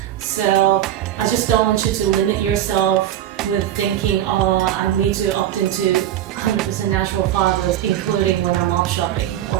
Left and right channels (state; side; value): quieter; left; 12.0 dB